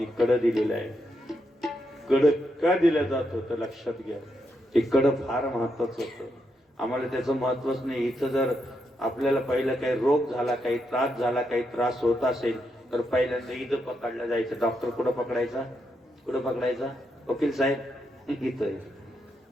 कड दिलेलं आहे, कड का दिलं जात होतं लक्षात घ्या. ते कड फार महत्वाचं होतं. आम्हाला त्याचं महत्वच नाही. इथं जर आपल्याला पहिलं काही रोग झाला, काही त्रास झाला, काही त्रास होत असेल तर पहिल्यांदा इथं पकडलं जायचं. डॉक्टर कुठं पकडायचा, कुठं पकडायचा? वकील साहेब इथं.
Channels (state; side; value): normal; both; correlation 0.81